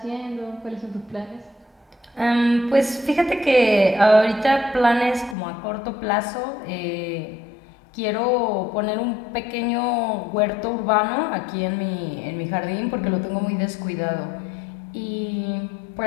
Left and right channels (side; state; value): right; drops out; at 5.4 s